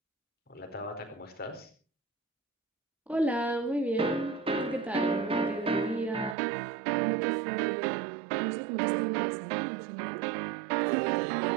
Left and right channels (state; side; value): drops out; left; at 6.4 s